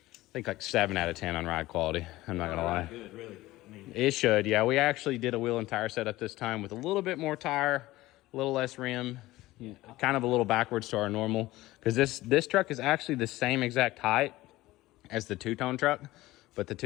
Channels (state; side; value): quieter; right; 17.7 dB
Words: think like 7 out of 10 on ride quality. I'm not gonna lie. Good, really. I mean, it should, yeah. We actually did a wheel and tire setup this time with a little bit more tire, a little less rim, kind of a little backwards to our normal, because this truck is actually the same exact height as the two-tone truck, but the